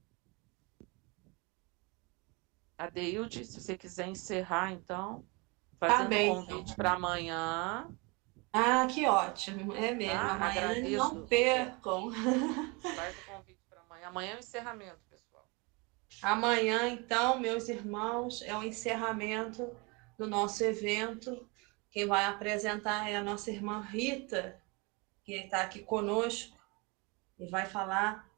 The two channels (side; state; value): left; quieter; 28.6 dB